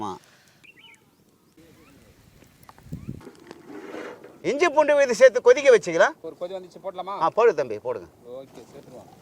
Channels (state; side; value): identical; both; correlation 1.00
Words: இஞ்சி பூண்டு விதை சேர்த்து கொதிக்க வச்சுக்கலாம். ஒரு கொதி வந்துச்சு, போடலாமா? போடு தம்பி, போடுங்க. ஓகே, சேர்த்துருவோம்.